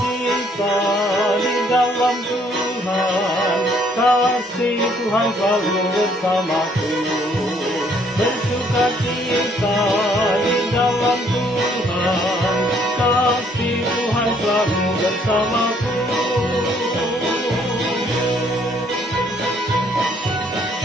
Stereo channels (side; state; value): both; normal; correlation 0.65